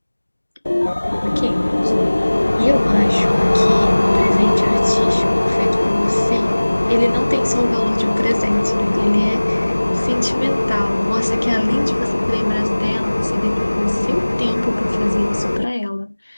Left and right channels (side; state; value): both; inverted; correlation -1.00